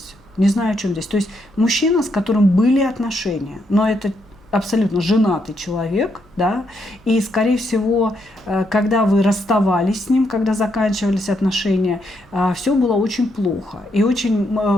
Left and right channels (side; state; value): right; noise; hum, 28 dB below the sound